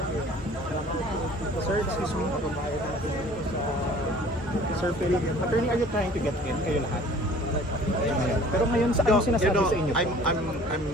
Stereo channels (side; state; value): both; normal; correlation 0.49